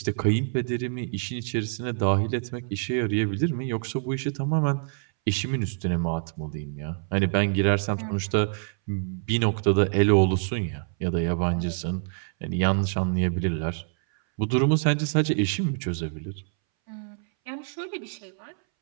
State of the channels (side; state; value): left; silent; 61 dB below the other